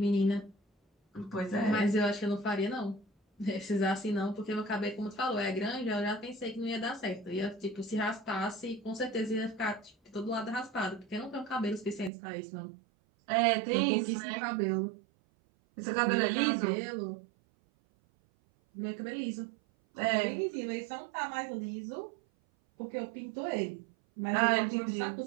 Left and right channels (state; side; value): drops out; left; at 12.1 s